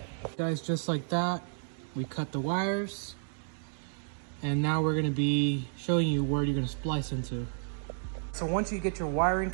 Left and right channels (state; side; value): silent; left; digital silence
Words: Guys, just like that, we cut the wires. And now we're gonna be showing you where you're gonna splice into. So once you get your wiring